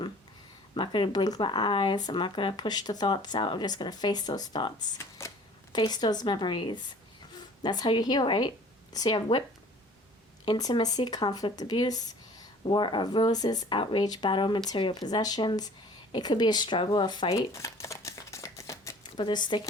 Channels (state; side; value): normal; both; correlation 0.49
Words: I'm not going to blink my eyes. I'm not going to push the thoughts out. I'm just going to face those thoughts. Face those memories. That's how you heal, right? So you have whip, intimacy, conflict, abuse, war of roses, outrage, battle, material possessions. It could be a struggle, a fight. But they're